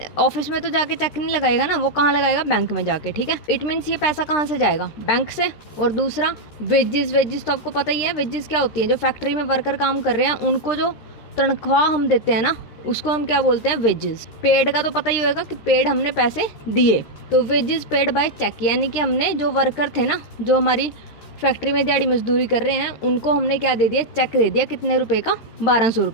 ऑफिस में तो जाके चेक नहीं लगाएगा ना, वो कहाँ लगाएगा, बैंक में जाके, ठीक है। इट मीन्स ये पैसा कहाँ से जाएगा, बैंक से। और दूसरा वेजेस तो आपको पता ही है, वेजेस क्या होती है, जो फैक्ट्री में वर्कर काम कर रहे हैं उनको जो तनख्वाह हम देते हैं ना, उसको हम क्या बोलते हैं, वेजेस। पेड का तो पता ही होगा कि पेड हमने पैसे दिए, तो वेजेस पेड बाय चेक, यानी कि हमने जो वर्कर थे ना, जो हमारी फैक्ट्री में दिहाड़ी मजदूरी कर रहे हैं, उनको हमने क्या दे दिया, चेक दे दिया। कितने रुपए का, 1200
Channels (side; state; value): right; late; 13 ms